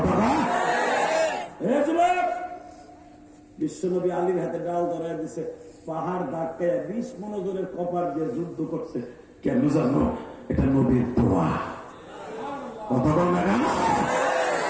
বিশ্ব নবী আলীর হাতে ডাল ধরাই দিছে, পাহাড় ধাক্কায় 20 মনোজনের কপার দিয়ে যুদ্ধ করছে। কেন জানো? এটা নবীর দোয়া। কথা বল না কেন?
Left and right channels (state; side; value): identical; both; correlation 1.00